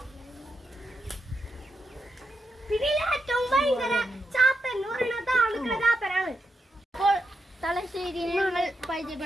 പിന്നെ ഏറ്റവും ഭയങ്കര ചാത്തൻ എന്ന് പറയുന്നത് ആളുകളെ ചാത്തനാണ്. അപ്പോൾ തലശ്ശേരിയെ ഞങ്ങൾ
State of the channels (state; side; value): normal; both; correlation 0.85